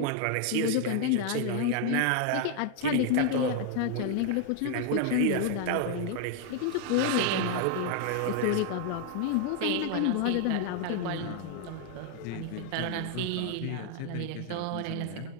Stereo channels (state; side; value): different; both; correlation 0.00